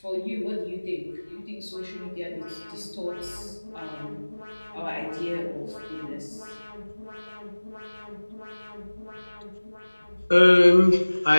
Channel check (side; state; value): both; inverted; correlation -1.00